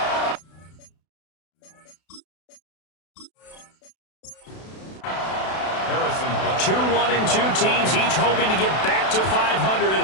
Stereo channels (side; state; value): right; late; 32 ms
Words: Two 1-2 teams, each hoping to get back to 500,